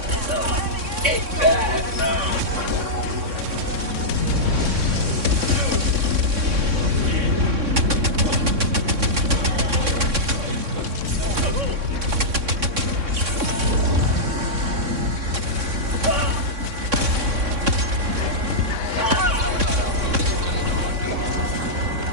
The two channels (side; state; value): left; late; 3.6 ms